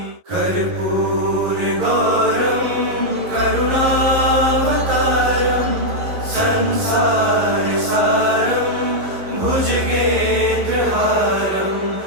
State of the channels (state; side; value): late; left; 11 ms